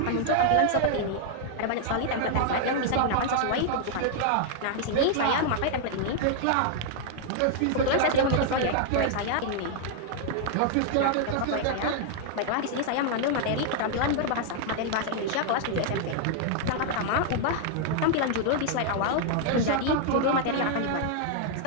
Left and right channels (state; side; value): different; both; correlation -0.01